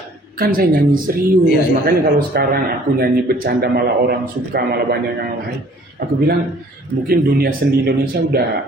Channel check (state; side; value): normal; both; correlation 0.55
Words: kan saya nyanyi serius. Iya. Makanya kalau sekarang aku nyanyi bercanda malah orang suka, malah banyak yang lain. Aku bilang mungkin dunia seni Indonesia